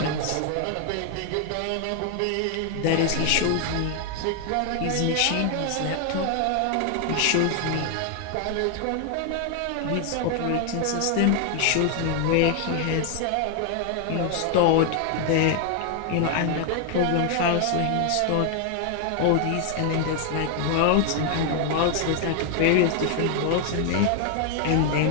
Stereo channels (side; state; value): both; different; correlation 0.00